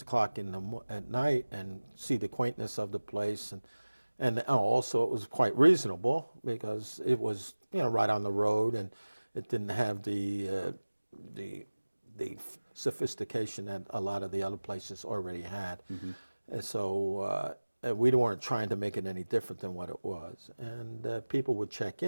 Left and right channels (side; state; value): both; inverted; correlation -1.00